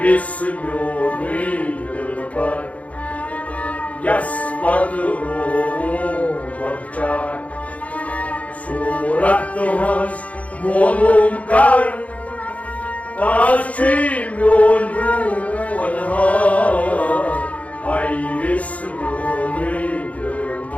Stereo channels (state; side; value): late; right; 0.067 ms